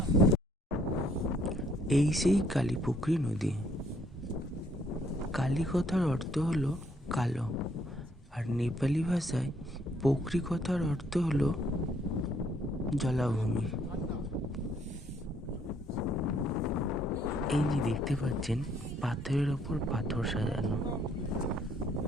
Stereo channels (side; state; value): both; normal; correlation 0.66